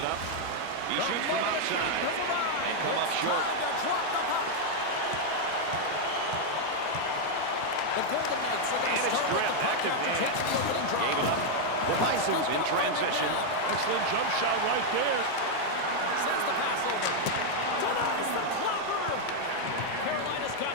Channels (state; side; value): different; both; correlation 0.00